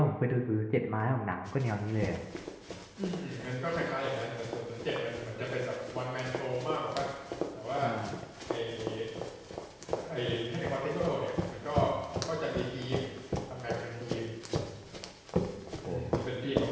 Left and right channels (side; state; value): both; identical; correlation 1.00